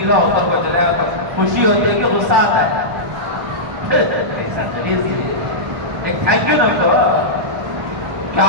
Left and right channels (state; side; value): late; left; 1.7 ms